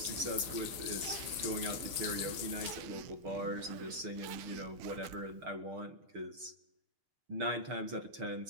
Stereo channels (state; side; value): late; left; 6.2 ms